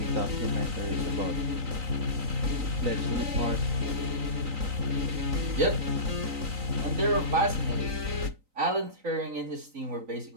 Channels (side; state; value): left; late; 3.9 ms